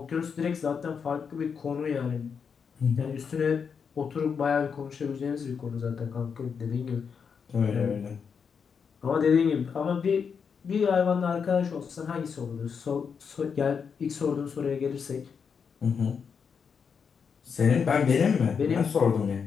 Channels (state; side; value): quieter; right; 6.3 dB